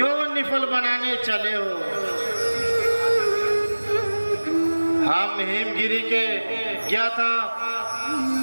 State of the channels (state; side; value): inverted; both; correlation -1.00